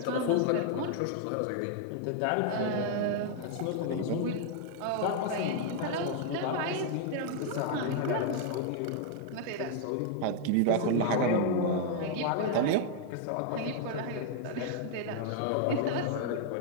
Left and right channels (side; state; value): both; different; correlation 0.00